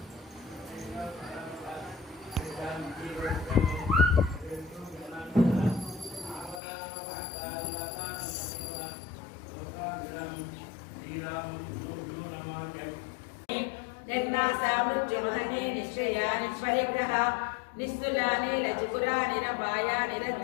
నిర్నాశామృత్యుమహనే నిశ్చయాని పరిగ్రహ నిస్తులాని లచికురాని రపాయాని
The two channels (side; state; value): right; drops out; at 6.6 s